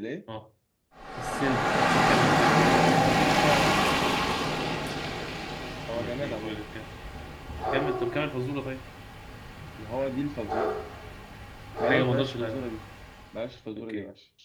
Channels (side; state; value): both; identical; correlation 1.00